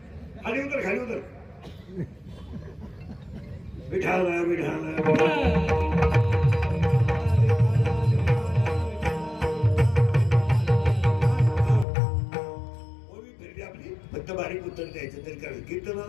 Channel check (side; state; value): right; drops out; at 11.9 s